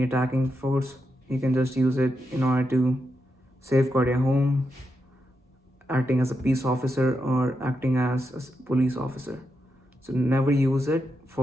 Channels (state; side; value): normal; both; correlation 0.85